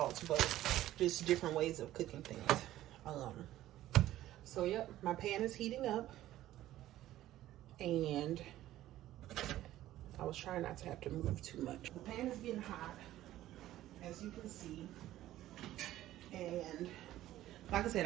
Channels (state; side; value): quieter; left; 14.2 dB